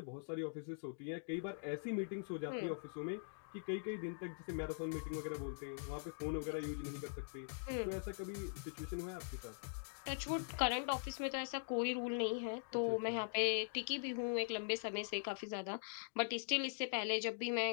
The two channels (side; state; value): right; silent; digital silence